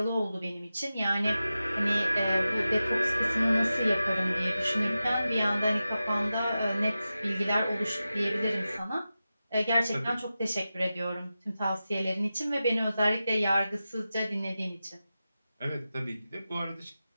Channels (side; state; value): both; inverted; correlation -0.93